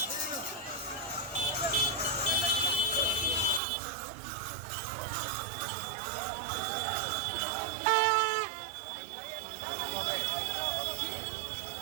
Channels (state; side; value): drops out; left; at 3.6 s